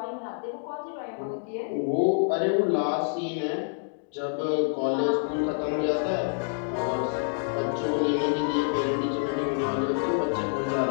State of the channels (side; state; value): right; silent; 60 dB below the other